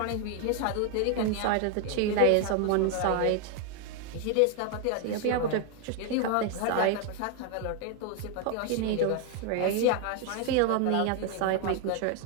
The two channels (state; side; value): different; both; correlation 0.01